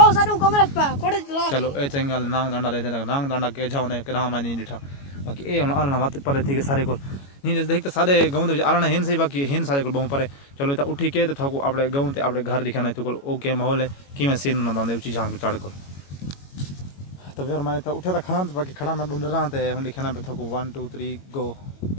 साडू कमरे पे कोड़े चला चलो ए चंगल नांग डंडा दे नांग डंडा के जाओ ने कदा मैं नहीं दिठा बाकी ए आलना बात पर थी के सारे को नहीं देख तो सारे गांव दे आलना हेन सही बाकी हेन सारे को बहु परे चलो तो उठी के तो थाको आपड़े गांव ते आपड़े घर दिखाना तो ओके माहौल है कि मैं सीन ना दांदे ऊंची झांक चढ़ को तो यार मैं तो उठे तो खड़ा तो बाकी खड़ा मैं ढूंढ रहा था हम लिखना पे थाको 1 2 3 गो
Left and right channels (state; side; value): late; right; 21 ms